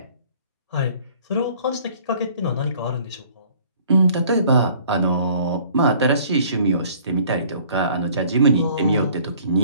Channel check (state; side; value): inverted; both; correlation -0.55